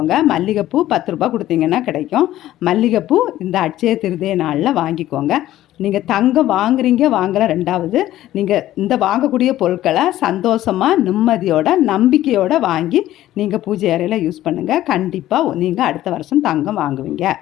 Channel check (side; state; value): right; quieter; 14.0 dB